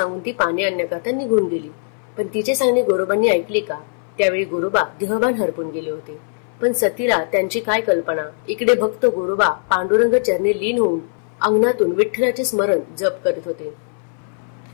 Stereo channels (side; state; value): right; silent; 61 dB below the other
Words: ती पाणी आणण्याकरता निघून गेली. पण तिचे सांगणे गोरोबांनी ऐकले का? त्यावेळी गोरोबा देहभान हरपून गेले होते. पण सतीला त्यांची काय कल्पना. इकडे भक्त गोरोबा पांडुरंग चरणी लीन होऊन अंगणातून विठ्ठलाचे स्मरण जप करीत होते.